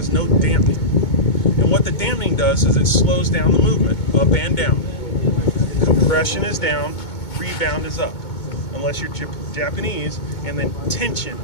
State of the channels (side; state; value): right; late; 2.2 ms